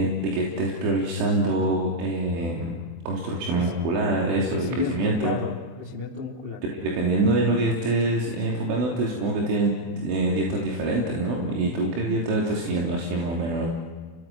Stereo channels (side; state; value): left; late; 24 ms